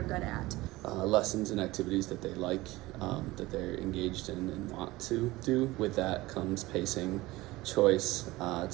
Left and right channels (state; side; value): quieter; left; 19.3 dB